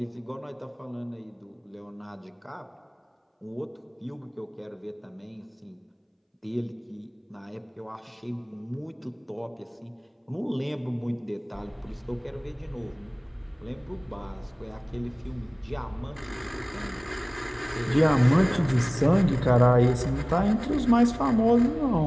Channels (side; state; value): both; identical; correlation 1.00